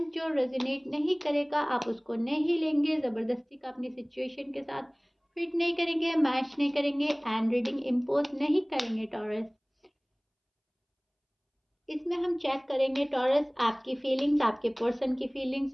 जो रेजोनेट नहीं करेगा आप उसको नहीं लेंगे, ज़बरदस्ती का अपनी सिचुएशन के साथ फिट नहीं करेंगे, मैच नहीं करेंगे एंड रीडिंग इम्पोज नहीं करेंगे टॉरस। इसमें हम चेक करेंगे टॉरस आपकी फीलिंग्स, आपके पर्सन की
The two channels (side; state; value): both; identical; correlation 1.00